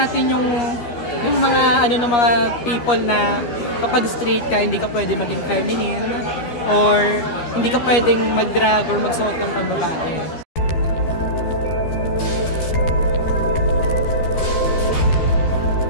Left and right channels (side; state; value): right; late; 13 ms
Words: yung mga ng mga people na kapag straight ka, hindi ka pwede maging feminine or hindi ka pwedeng mag-drag or magsuot ng pambabae.